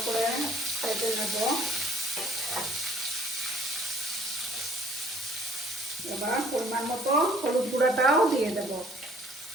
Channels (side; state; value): both; normal; correlation 0.58